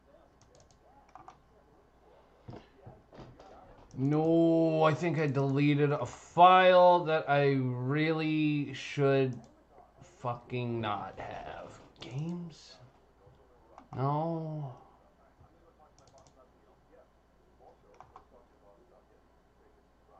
No, I think I deleted a file that I really should fucking not have. Games? No.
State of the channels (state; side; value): identical; both; correlation 1.00